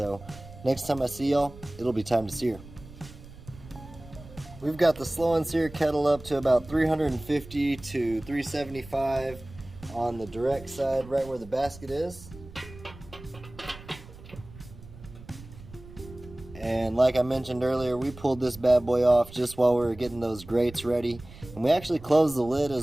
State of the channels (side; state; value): right; noise; rumble, 17 dB below the sound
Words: next time I see y'all, it'll be time to sear. We've got the slow and sear kettle up to about 350 to 375 on the direct side, right where the basket is. And like I mentioned earlier, we pulled this bad boy off just while we were getting those grates ready. And we actually closed the lid